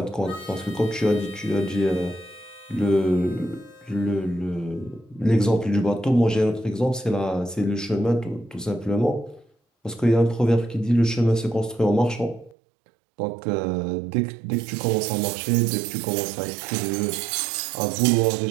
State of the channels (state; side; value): drops out; left; at 12.6 s